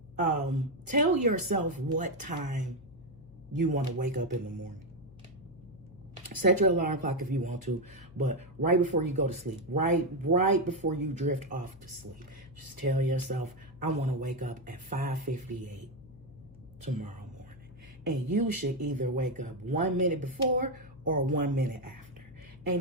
tell yourself what time you want to wake up in the morning. Set your alarm clock if you want to, but right before you go to sleep, right before you drift off to sleep, just tell yourself, I want to wake up at 5:58 tomorrow morning. And you should either wake up 1 minute before or 1 minute after.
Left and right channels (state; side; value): noise; left; hum, 22 dB below the sound